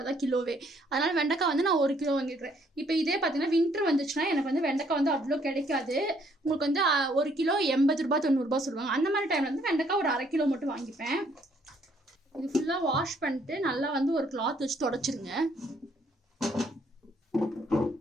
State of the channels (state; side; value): normal; both; correlation 0.67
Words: தான் கிலோவே. அதனால் வெண்டைக்காய் வந்து நான் 1 கிலோ வாங்கிக்கிறேன். இப்போ இதே பார்த்தீங்கன்னா வின்டர் வந்துச்சுன்னா எனக்கு வந்து வெண்டைக்காய் வந்து அவ்வளோ கிடைக்காது. உங்களுக்கு வந்து 1 கிலோ 80 ரூபா 90 ரூபா சொல்லுவாங்க. அந்த மாதிரி டைமில் வந்து வெண்டைக்காய் ஒரு 1/2 கிலோ மட்டும் வாங்கிப்பேன். இது ஃபுல்லாக வாஷ் பண்ணிட்டு நல்லா வந்து ஒரு கிளாத் வச்சு தொடச்சிருங்க.